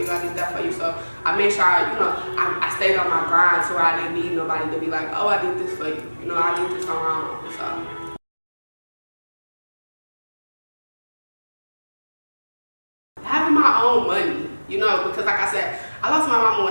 I did that for you. So I made sure I stayed on my grind, so I didn't need nobody to be like, oh, I did this for you. You know, I did this on my own. So having my own money, you know, because like I said, I lost my mama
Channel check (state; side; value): inverted; both; correlation -1.00